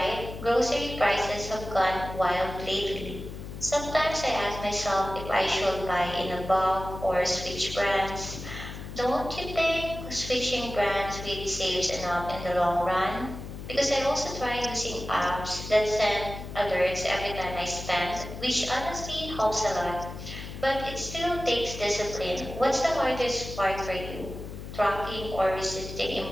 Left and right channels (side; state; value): left; noise; hum, 10 dB below the sound